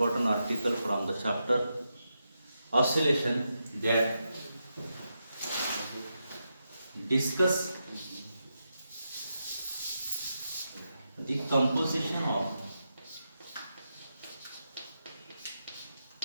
article from the chapter oscillation that discuss the composition of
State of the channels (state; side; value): inverted; both; correlation -0.86